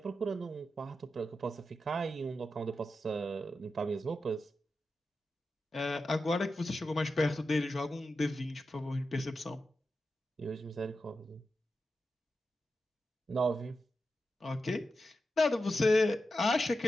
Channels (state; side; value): normal; both; correlation 0.90